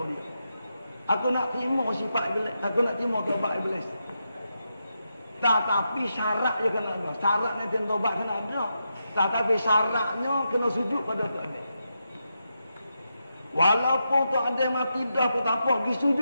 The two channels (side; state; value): both; inverted; correlation -0.85